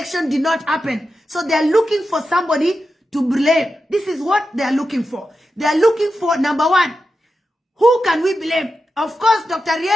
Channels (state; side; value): normal; both; correlation 0.90